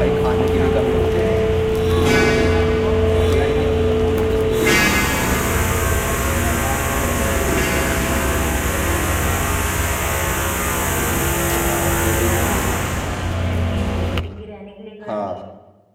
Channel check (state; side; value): identical; both; correlation 1.00